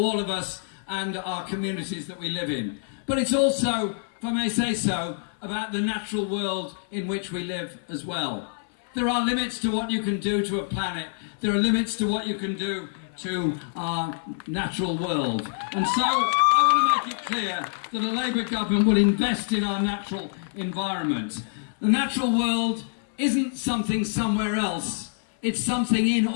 of us and our communities that we live in. But it's also, if I may say so, about the natural world in which we live as well. There are limits to what you can do to a planet. There are limits to what you can do to our natural world. And so I want to make it clear that a Labour government will invest in our natural environment. The natural world isn't something somewhere else. It's something in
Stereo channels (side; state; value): right; silent; 58 dB below the other